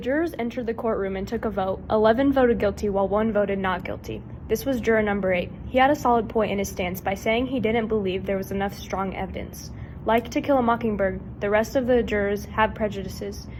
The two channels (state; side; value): identical; both; correlation 1.00